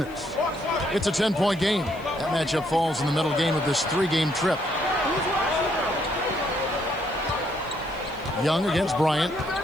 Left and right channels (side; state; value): left; noise; hiss, 26 dB below the sound